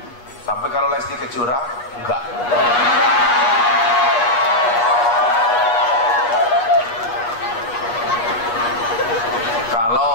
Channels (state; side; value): late; right; 8.3 ms